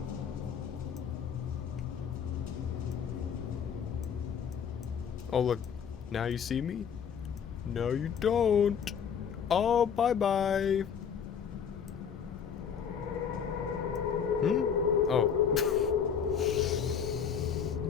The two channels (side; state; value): right; quieter; 7.4 dB